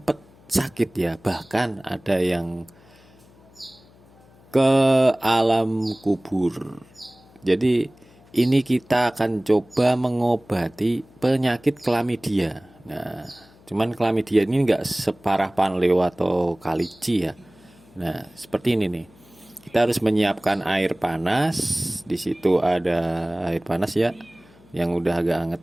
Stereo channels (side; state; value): left; noise; hum, 27 dB below the sound